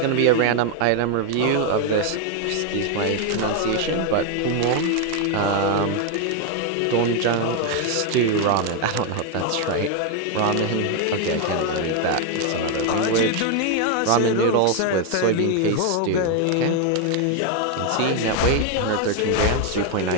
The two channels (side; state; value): both; different; correlation 0.01